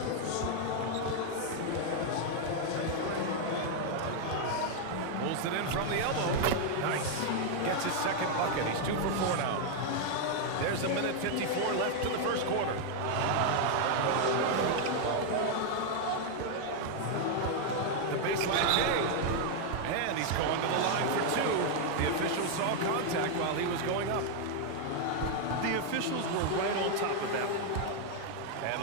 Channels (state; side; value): different; both; correlation 0.00